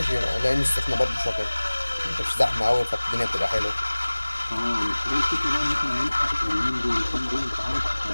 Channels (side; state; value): both; inverted; correlation -1.00